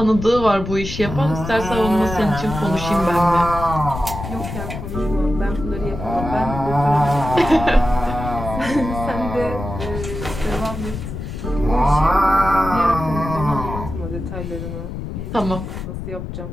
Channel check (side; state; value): left; noise; rumble, 7 dB below the sound